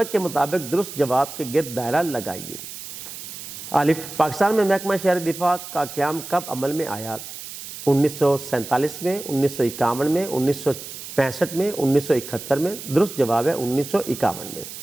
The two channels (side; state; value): right; noise; hiss, 11 dB below the sound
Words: کے مطابق درست جواب کے گرد دائرہ لگائیے۔ الف، پاکستان میں محکمہ شہری دفاع کا قیام کب عمل میں آیا؟ 1947 میں، 1951 میں، 1965 میں، 1971 میں۔ درست جواب ہے 1951 میں۔